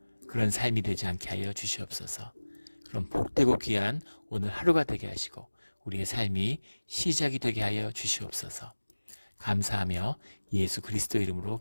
그런 삶이 되지 않게 하여 주시옵소서. 그럼 복되고 귀한 오늘 하루가 되게 하시고 우리의 삶이 시작이 되게 하여 주시옵소서. 감사하며 예수 그리스도 이름으로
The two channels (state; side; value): inverted; both; correlation -1.00